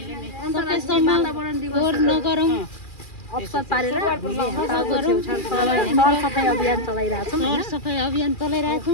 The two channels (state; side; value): late; right; 2.4 ms